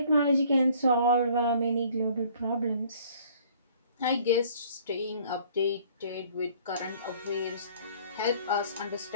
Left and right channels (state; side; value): inverted; both; correlation -0.56